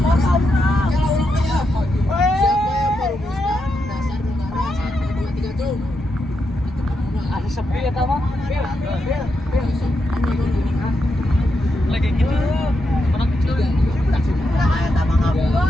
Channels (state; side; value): normal; both; correlation 0.84